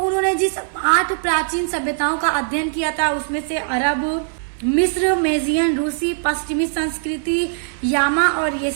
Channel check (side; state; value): left; silent; digital silence